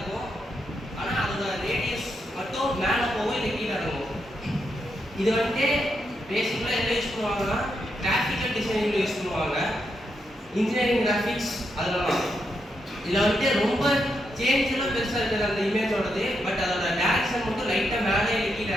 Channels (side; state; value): both; normal; correlation 0.82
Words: ஆனா அதோட ரேடியஸ் மட்டும் மேல போகும் இல்ல கீழ இறங்கும். இது வந்து பேசிக்கலா என்ன யூஸ் பண்ணுவாங்கன்னா கிராஃபிக்கல் டிசைனிங்ல யூஸ் பண்ணுவாங்க. இன்ஜினியரிங் கிராஃபிக்ஸ் அதெல்லாம் இதுல வந்து ரொம்ப சேஞ்ச்லாம் பெருசா இருக்குது அந்த இமேஜோடது. பட் அதோட டைரக்ஷன் மட்டும் லைட்டா மேலே கீழ